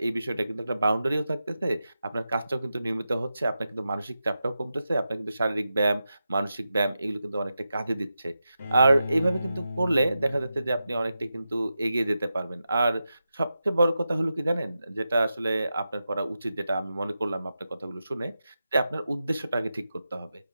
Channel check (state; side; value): inverted; both; correlation -0.90